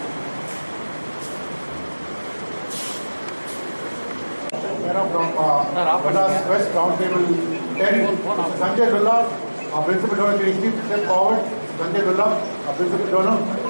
From Madras West Roundtable 10, Sanjay Lulla, our principal donor, can you please step forward? Sanjay Lulla, our principal donor.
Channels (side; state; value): both; inverted; correlation -1.00